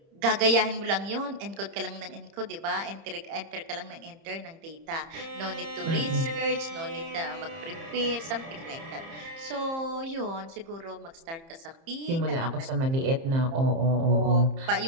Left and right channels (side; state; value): left; late; 30 ms